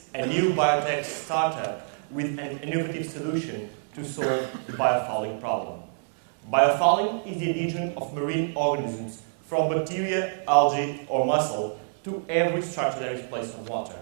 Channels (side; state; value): left; silent; 57 dB below the other